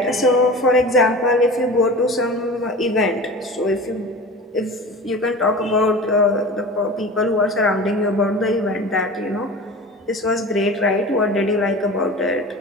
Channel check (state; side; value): normal; both; correlation 0.35